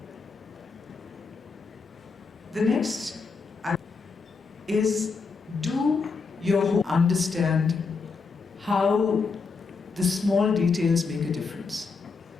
The next is do your understand how the small details make a difference.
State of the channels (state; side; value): quieter; right; 4.7 dB